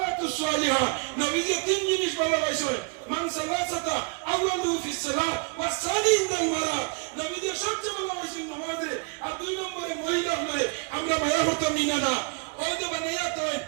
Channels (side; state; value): left; quieter; 32.4 dB